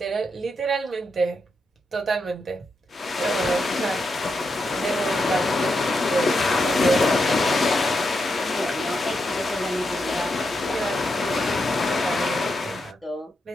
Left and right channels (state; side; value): normal; both; correlation 0.84